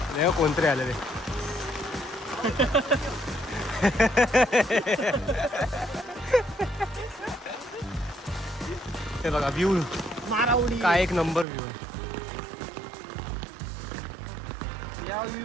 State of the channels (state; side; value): drops out; left; at 11.5 s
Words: नाही कोणतरी आलेले. हे बघा व्ह्यू मारावडी काय एक नंबर व्ह्यू आहे. या व्ह्यू